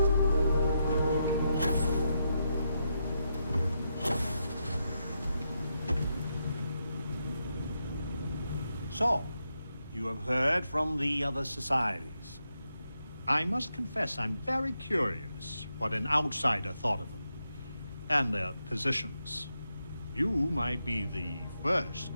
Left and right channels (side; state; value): both; inverted; correlation -0.83